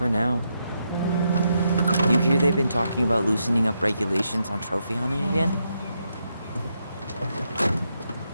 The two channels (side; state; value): both; inverted; correlation -0.81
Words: now. You hear they've been talking about loosening up regulations on trophy hunting again?